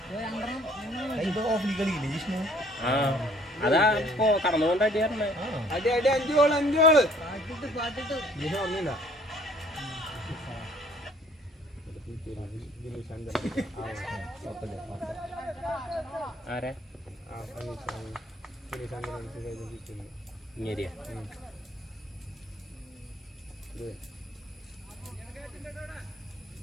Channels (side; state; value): both; normal; correlation 0.58